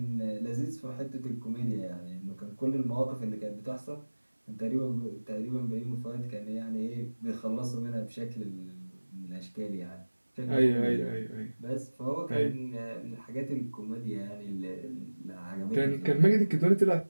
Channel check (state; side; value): inverted; both; correlation -1.00